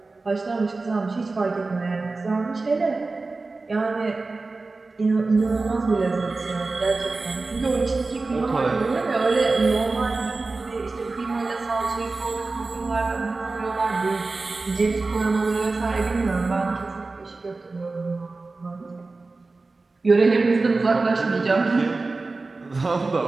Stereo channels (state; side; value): quieter; left; 3.6 dB